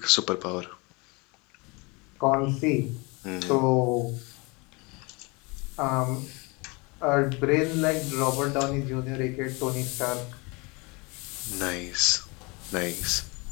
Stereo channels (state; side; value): quieter; right; 27.8 dB